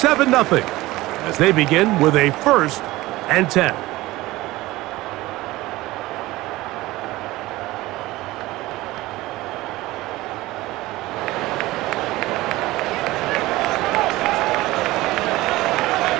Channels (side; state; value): left; quieter; 18.6 dB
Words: as they begin with a 1st and 10.